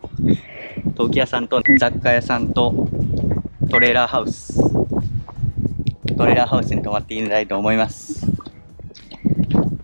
陶器屋さんと雑貨屋さんとトレーラーハウスに泊まってみたいと思います。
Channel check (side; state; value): both; inverted; correlation -1.00